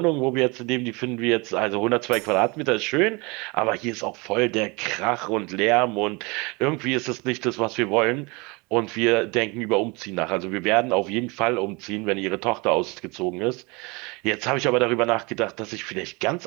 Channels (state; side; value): quieter; left; 27.5 dB